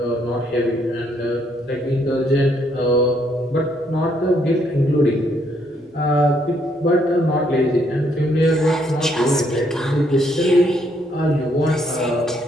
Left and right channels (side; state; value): both; normal; correlation 0.71